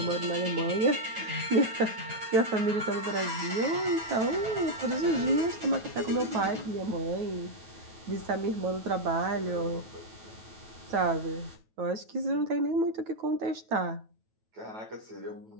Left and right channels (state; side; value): late; left; 9.2 ms